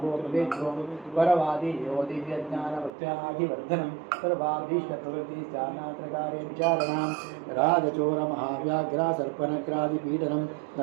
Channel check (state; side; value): drops out; left; at 2.9 s